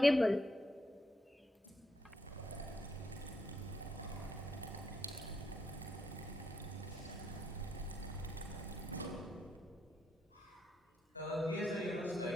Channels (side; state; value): both; normal; correlation 0.77